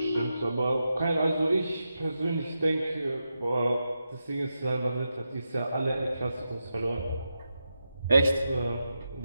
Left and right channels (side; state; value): both; inverted; correlation -0.88